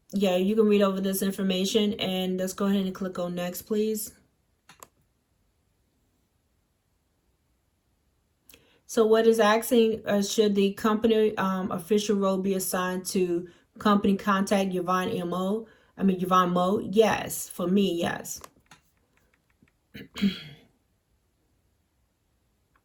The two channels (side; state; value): both; identical; correlation 1.00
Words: you can read over this information, and let's go ahead and click on next, please. So what is asking, should the company official role be assigned to company contact Yvonne Mo? Yes, for me, yes.